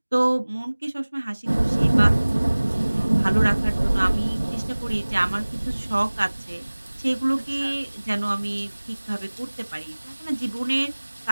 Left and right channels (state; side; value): inverted; both; correlation -1.00